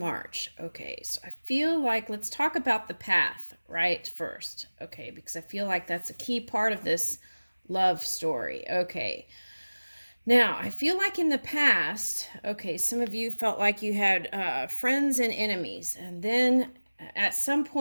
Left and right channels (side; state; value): both; inverted; correlation -1.00